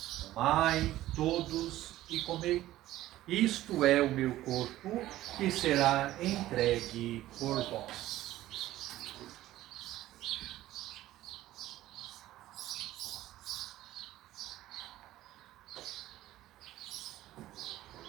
tomai todos e comei. Isto é o meu corpo, que será entregue por vós.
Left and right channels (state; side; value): quieter; left; 14.9 dB